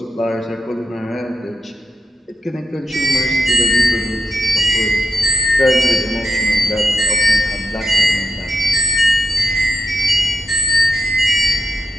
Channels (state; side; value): normal; both; correlation 0.86